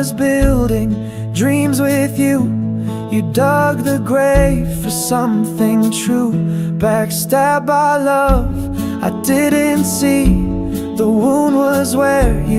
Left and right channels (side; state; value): both; identical; correlation 1.00